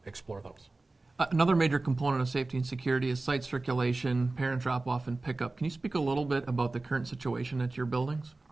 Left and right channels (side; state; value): left; quieter; 3.2 dB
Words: explore those. Another major component of safety and security is site circulation, parent drop-off, and pickup. Can you speak a little bit about the current situation at your buildings?